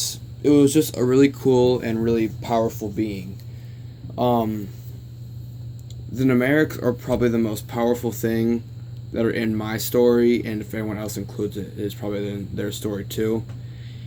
it was just a really cool and really powerful being. Um, the Ragmareeks are probably the most powerful thing that are in my story, and if anyone else includes it, it's probably in their story too,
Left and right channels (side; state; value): both; identical; correlation 1.00